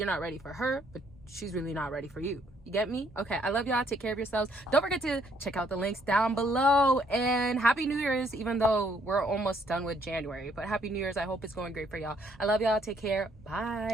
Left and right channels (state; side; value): normal; both; correlation 0.67